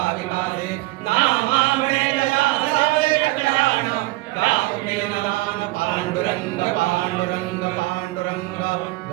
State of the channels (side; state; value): left; quieter; 20.3 dB